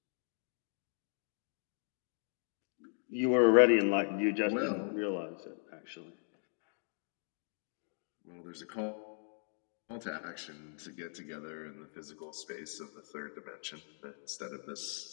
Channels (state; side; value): silent; right; digital silence